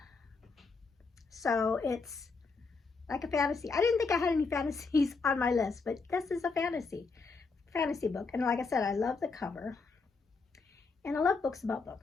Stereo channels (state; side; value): quieter; right; 4.4 dB